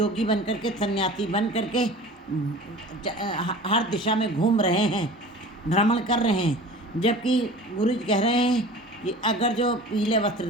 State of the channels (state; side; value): normal; both; correlation 0.40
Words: बन करके सन्यासी बन करके हर दिशा में घूम रहे हैं, भ्रमण कर रहे हैं। जबकि गुरु जी कह रहे हैं कि अगर जो पीले वस्त्र